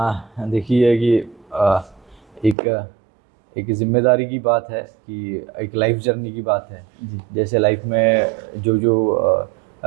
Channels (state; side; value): drops out; left; at 2.6 s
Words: है। देखिए कि एक जिम्मेदारी की बात है कि एक लाइफ जर्नी की बात है। जैसे लाइफ में जो